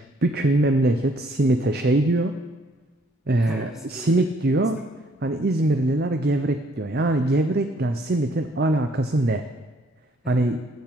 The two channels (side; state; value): both; normal; correlation 0.65